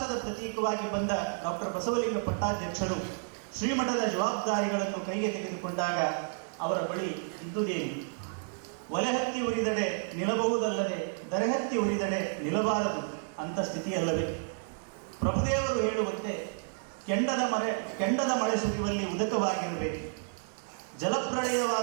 ಪ್ರತೀಕವಾಗಿ ಬಂದ ಡಾಕ್ಟರ್ ಬಸವಲಿಂಗ ಪಟ್ಟಾಧ್ಯಕ್ಷರು ಶ್ರೀಮಠದ ಜವಾಬ್ದಾರಿಗಳನ್ನು ಕೈಗೆ ತೆಗೆದುಕೊಂಡಾಗ ಅವರ ಬಳಿ ಇದ್ದುದೇನು? ಒಲೆಹತ್ತಿ ಉರಿದಡೆ ನಿಲ್ಲಬಹುದಲ್ಲದೆ ದರೆಹತ್ತಿ ಉರಿದಡೆ ನಿಲ್ಲಬಾರದು ಅಂತ ಸ್ಥಿತಿಯಲ್ಲವೇ? ಪ್ರಭುದೇವರು ಹೇಳುವಂತೆ ಕೆಂಡದ ಮಳೆ ಸುರಿಯುವಲ್ಲಿ ಉದಕವಾಗಿರಬೇಕು,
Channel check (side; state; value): left; silent; digital silence